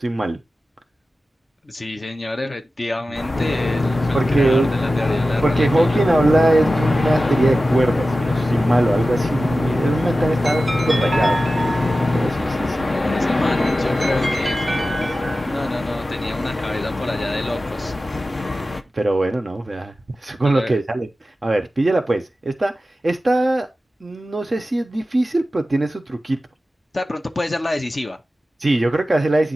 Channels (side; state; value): both; normal; correlation 0.94